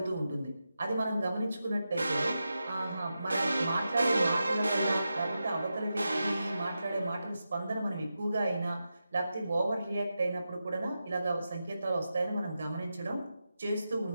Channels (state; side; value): inverted; both; correlation -0.90